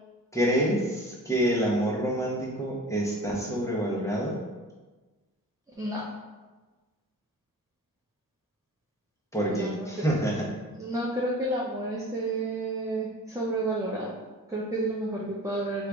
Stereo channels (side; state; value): both; normal; correlation 0.42